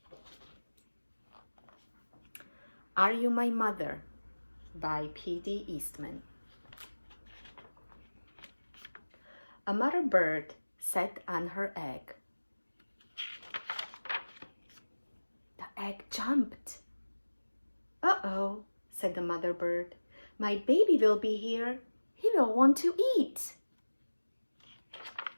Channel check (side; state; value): both; inverted; correlation -1.00